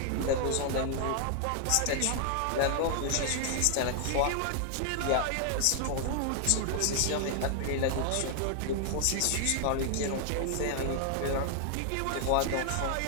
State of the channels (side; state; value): both; different; correlation 0.00